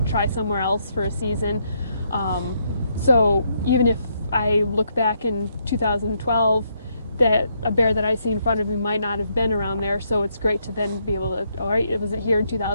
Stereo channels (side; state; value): both; inverted; correlation -0.75